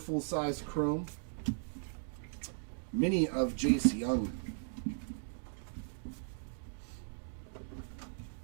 chrome. Mini of Jace Young.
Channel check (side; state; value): left; silent; digital silence